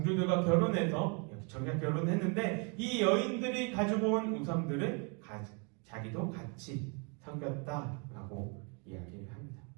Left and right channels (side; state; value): left; quieter; 35.3 dB